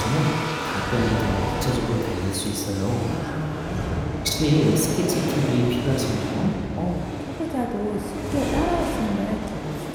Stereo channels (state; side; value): identical; both; correlation 1.00